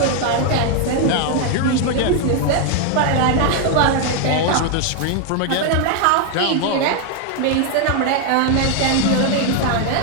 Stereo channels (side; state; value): both; different; correlation 0.01